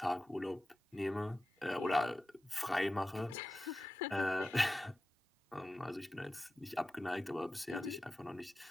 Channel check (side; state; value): both; normal; correlation 0.94